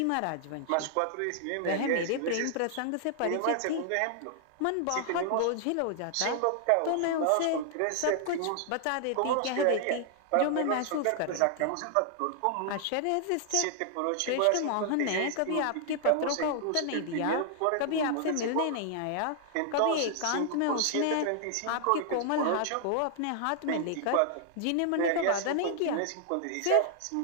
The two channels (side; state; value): both; different; correlation 0.00